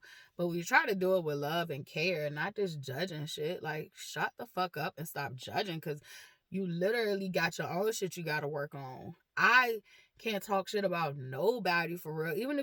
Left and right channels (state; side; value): identical; both; correlation 1.00